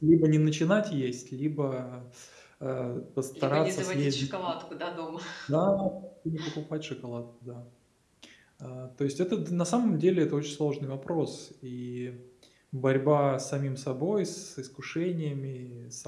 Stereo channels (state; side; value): identical; both; correlation 1.00